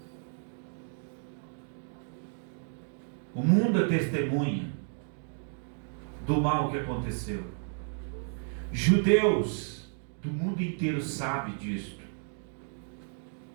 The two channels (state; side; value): silent; left; 56 dB below the other